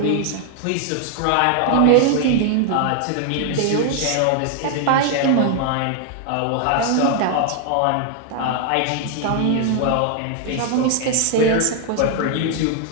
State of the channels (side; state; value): both; different; correlation 0.00